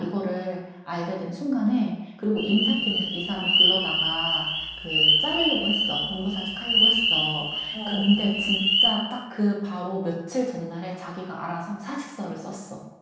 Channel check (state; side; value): identical; both; correlation 1.00